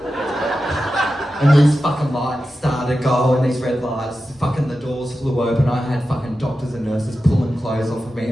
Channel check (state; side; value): normal; both; correlation 0.92